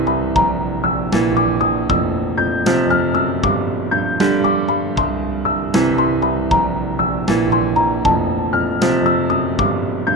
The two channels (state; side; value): normal; both; correlation 0.35